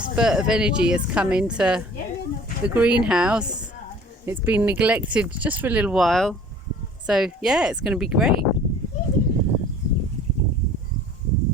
of energy has come into the greenhouse. It's been neglected just for a little while. So yeah, it's going to be great.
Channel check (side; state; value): both; normal; correlation 0.48